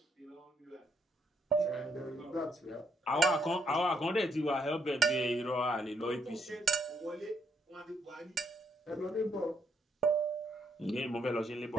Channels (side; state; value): both; normal; correlation 0.74